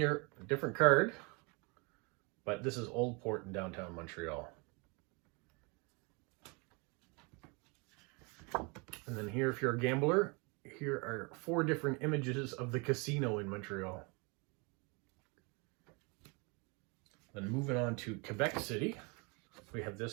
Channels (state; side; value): quieter; left; 30.5 dB